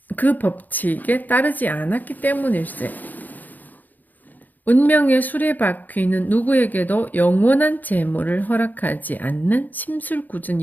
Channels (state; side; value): late; right; 0.084 ms